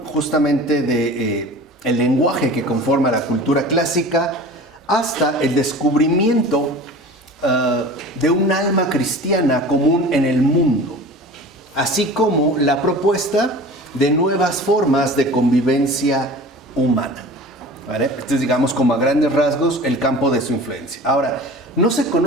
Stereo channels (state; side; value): normal; both; correlation 0.39